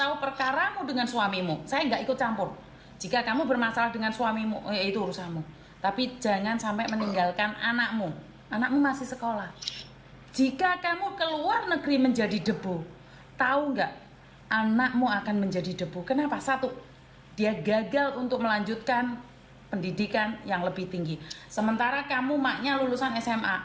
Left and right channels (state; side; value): identical; both; correlation 1.00